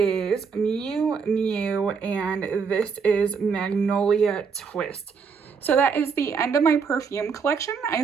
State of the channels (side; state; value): left; quieter; 5.7 dB